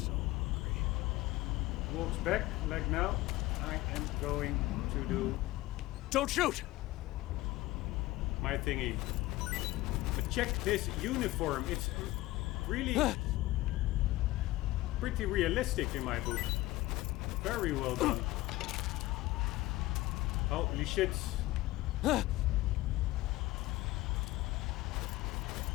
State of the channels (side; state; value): right; quieter; 18.4 dB